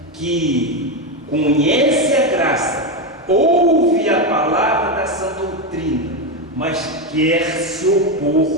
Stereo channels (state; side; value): normal; both; correlation 0.10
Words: que conhece a graça, ouve a palavra da sã doutrina, mas quer se